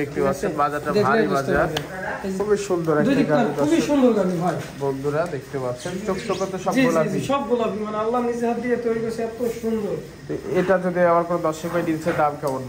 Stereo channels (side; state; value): both; identical; correlation 1.00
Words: পাচ্ছেন বাজারটা দেখলে ভারী বুঝতে বাজার। পারবেন। খুবই সুন্দর দুই একটা দিকটা গাভী খুবই দর্শক সুন্দর গাভী ভাই। বন্ধুরা দেখতে পাচ্ছেন। চোখ তো সব জি জি গোলাপি। জি, সব গোলাপি, মানে আল্লাহ নিজে হাত দিয়ে তৈরি করেছে, এত সুন্দর। তো এটা যদি আমার কোনো দর্শক ভাই দিচ্ছে দাম কেমন